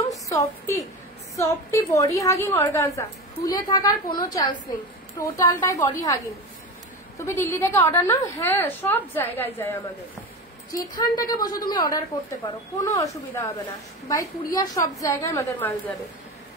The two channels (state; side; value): normal; both; correlation 0.25